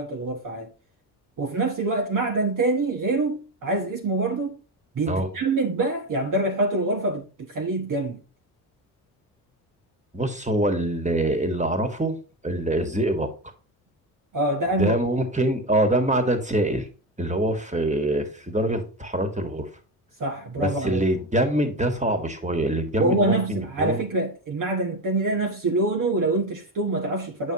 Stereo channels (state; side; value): normal; both; correlation 0.17